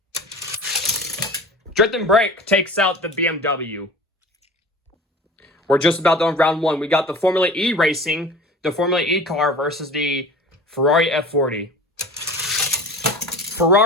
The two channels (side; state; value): both; normal; correlation 0.39